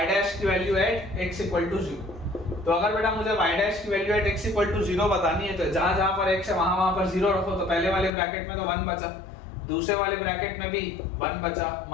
डैश की value at x equal to 0। तो अगर बेटा मुझे y डैश की value at x equal to 0 बतानी है तो जहां पर x है वहां पर 0 रखो। तो पहले वाले ब्रैकेट में तो 1 बचा, दूसरे वाले ब्रैकेट में भी 1 बचा,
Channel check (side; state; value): right; drops out; at 8.1 s